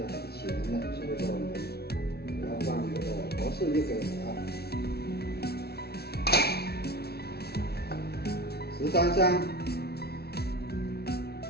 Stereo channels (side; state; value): right; late; 0.46 ms